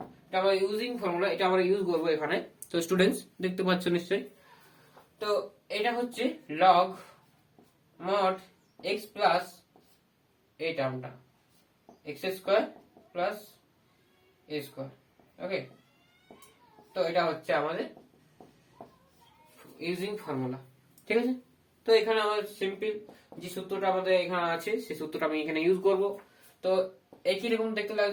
এটা আমরা ইউজিং ফর্মুলা এটা আমরা ইউজ করব এখানে। তো স্টুডেন্টস দেখতে পাচ্ছ নিশ্চয়ই, তো এটা হচ্ছে লগ মড এক্স প্লাস এই টার্মটা x square plus a square. Okay, তো এটা হচ্ছে আমাদের ইউজিং ফর্মুলা, ঠিক আছে। তো এখানে আমাদের সিম্পল যে সূত্রটা আমাদের এখানে আছে সেই সূত্রটা আমি এখানে ইউজ করব। তো একই রকম দেখতে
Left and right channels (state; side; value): identical; both; correlation 1.00